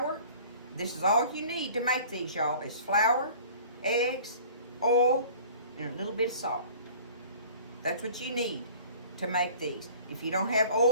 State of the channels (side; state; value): both; inverted; correlation -0.47